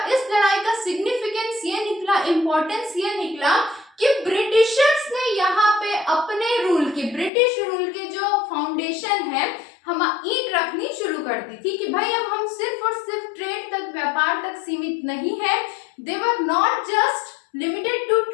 इस लड़ाई का सिग्निफिकेंस ये निकला, इंपॉर्टेंस ये निकला कि ब्रिटिशर्स ने यहाँ पे अपने रूल की, ब्रिटिश रूल के जो फाउंडेशन है हम ईंट रखनी शुरू कर दी थी कि भाई अब हम सिर्फ और सिर्फ ट्रेड तक, व्यापार तक सीमित नहीं है। They were not just limited to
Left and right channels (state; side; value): drops out; right; at 7.3 s